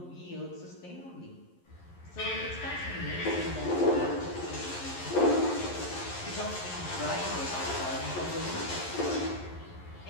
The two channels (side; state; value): right; late; 11 ms